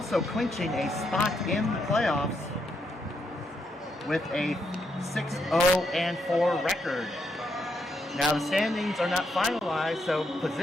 clinching a spot in the playoffs with a 6-0-4 record. Now, the standings are not finalized, so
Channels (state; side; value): normal; both; correlation 0.79